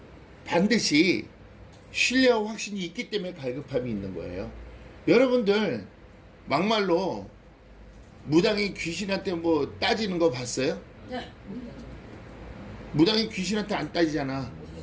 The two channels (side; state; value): both; identical; correlation 1.00